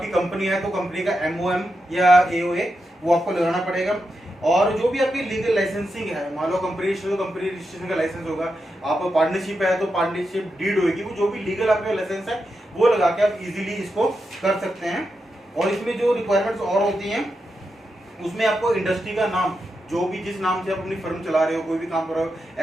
कंपनी है तो कंपनी का एमओएम या एओए वो आपको लगाना पड़ेगा। और जो भी आपकी लीगल लाइसेंसिंग है, मान लो कंपनी रजिस्टर तो कंपनी रजिस्ट्रेशन का लाइसेंस होगा, आप पार्टनरशिप है तो पार्टनरशिप डीड होगी, वो जो भी लीगल आपका लाइसेंस है वो लगा के आप इजीली इसको कर सकते हैं। और इसमें जो रिक्वायरमेंट्स और होती हैं उसमें आपको इंडस्ट्री का नाम, जो भी जिस नाम से आप अपनी फर्म चला रहे हो, कोई भी काम कर रहे हो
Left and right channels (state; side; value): normal; both; correlation 0.87